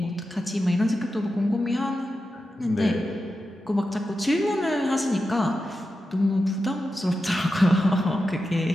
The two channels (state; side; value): normal; both; correlation 0.90